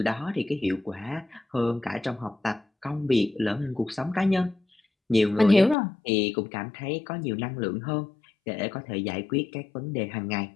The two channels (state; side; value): drops out; right; at 5.8 s